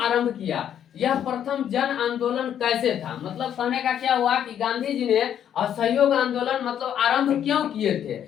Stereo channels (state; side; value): quieter; right; 9.6 dB